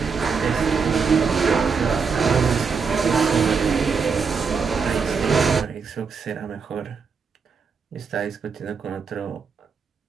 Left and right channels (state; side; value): quieter; left; 5.5 dB